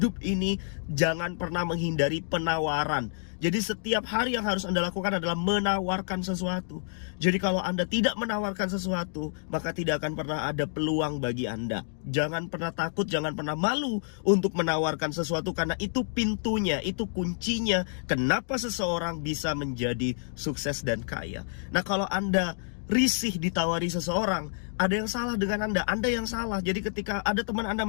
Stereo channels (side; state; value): right; silent; digital silence